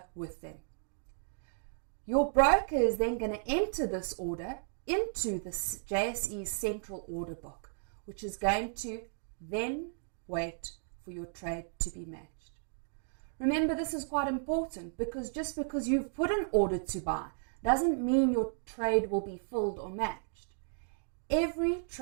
with them. Your broker is then going to enter this order into the JSE central order book, which is going to then wait for your trade to be matched. Remember, this is quite important because just because you've put an order to buy doesn't mean your trade will be filled or matched. Every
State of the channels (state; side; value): silent; left; digital silence